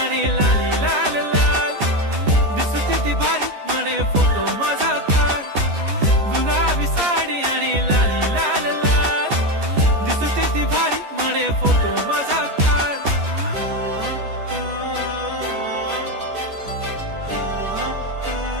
लाली लाल लाल दिसते ती भारी म्हणे फोटो माझा काढ. गुलाबी साडी आणि लाली लाल लाल दिसते ती भारी म्हणे फोटो माझा काढ.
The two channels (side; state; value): left; late; 14 ms